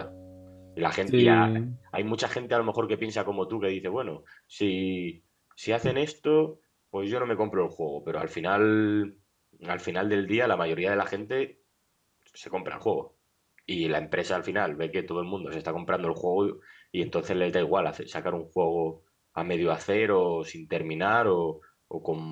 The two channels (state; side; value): identical; both; correlation 1.00